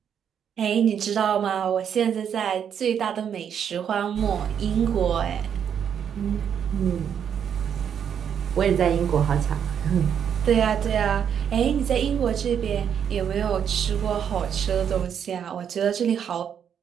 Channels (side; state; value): left; quieter; 8.3 dB